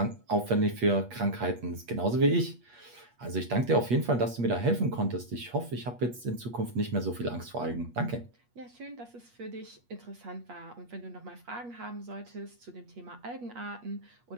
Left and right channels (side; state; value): left; late; 8.4 ms